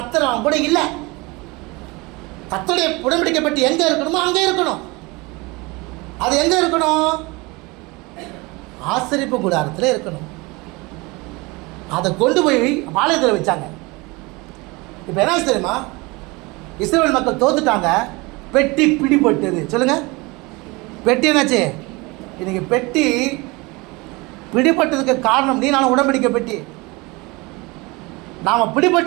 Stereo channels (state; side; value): quieter; left; 24.8 dB